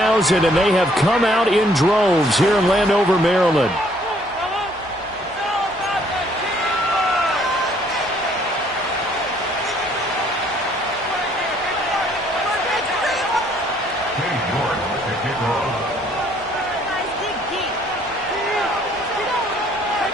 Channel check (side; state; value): both; normal; correlation 0.63